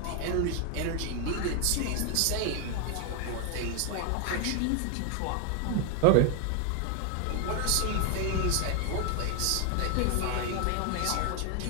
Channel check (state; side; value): different; both; correlation 0.00